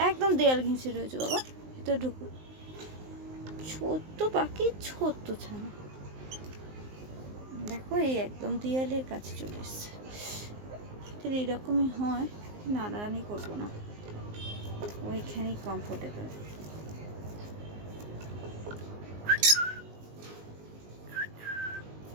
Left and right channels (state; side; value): late; left; 19 ms